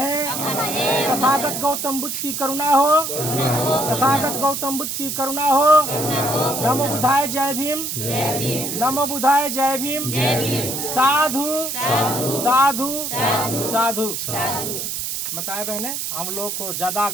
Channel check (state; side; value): noise; right; hiss, 4 dB below the sound